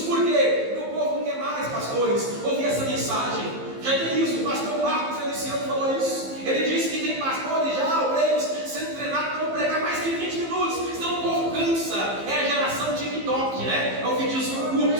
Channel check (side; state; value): left; late; 15 ms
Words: Por quê? Meu povo não quer mais, pastores, ouvir essa mensagem. Já tem isso, o pastor Marco Feliciano falou isso. Ele disse que tem pastores já, obreiros, sendo treinados para pregar mais que 20 minutos, senão o povo cansa. É a geração TikTok, né? É o videozinho curto,